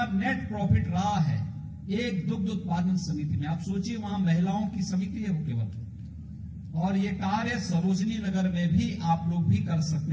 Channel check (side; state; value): both; identical; correlation 1.00